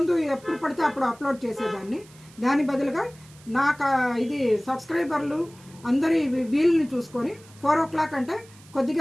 ఎప్పుడు పడితే అప్పుడు అప్లోడ్ చేసేదాన్ని. దాని బదులుగా నాకు ఇది సబ్స్క్రైబర్లు అందరి వీలుని చూసుకొని 4 o'clock అంటే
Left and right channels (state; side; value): noise; right; hiss, 25 dB below the sound